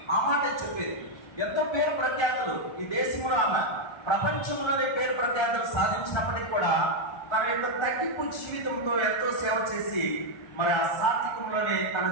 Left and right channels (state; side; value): late; right; 1.3 ms